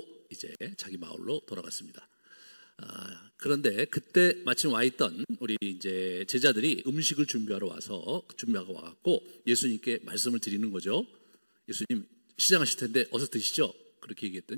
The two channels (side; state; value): both; inverted; correlation -1.00